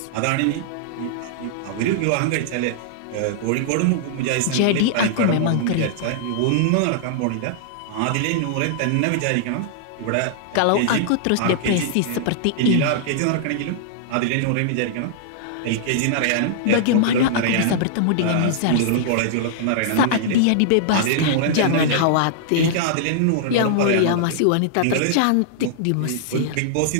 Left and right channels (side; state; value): both; different; correlation -0.01